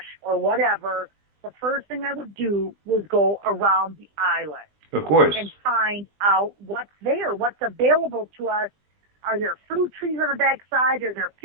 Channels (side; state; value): left; late; 20 ms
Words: or whatever, the first thing I would do was go around the island. Of course. And find out what's there, what's available to us. Are there fruit trees on the backside? Are there